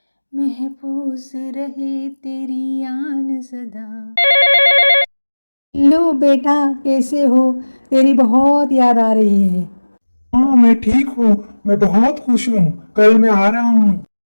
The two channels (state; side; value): inverted; both; correlation -1.00